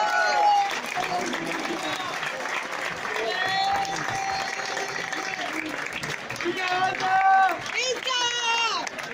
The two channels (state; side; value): identical; both; correlation 1.00